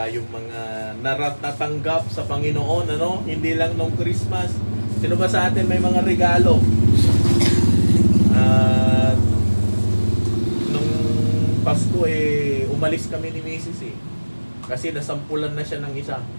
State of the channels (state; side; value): inverted; both; correlation -1.00